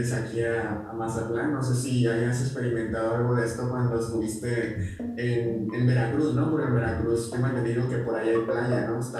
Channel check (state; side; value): identical; both; correlation 1.00